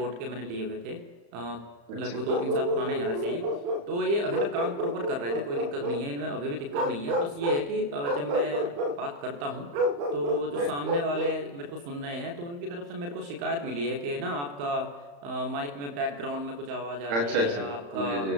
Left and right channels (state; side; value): late; left; 35 ms